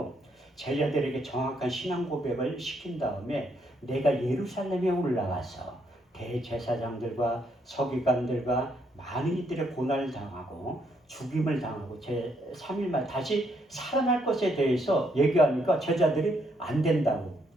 제자들에게 정확한 신앙 고백을 시킨 다음에 내가 예루살렘에 올라가서 대제사장들과 서기관들과 많은 이들의 고난을 당하고 죽임을 당하고 제3일 만에 다시 살아날 것에 대해서 얘기하니까 제자들이 안 된다고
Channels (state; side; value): normal; both; correlation 0.73